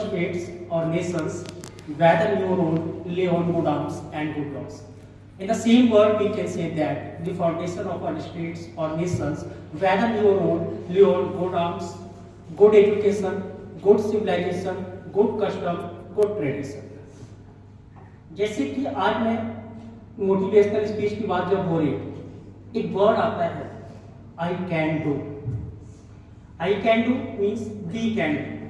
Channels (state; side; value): identical; both; correlation 1.00